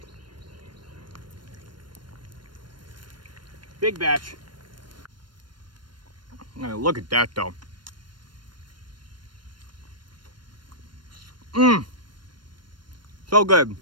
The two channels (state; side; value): late; left; 0.72 ms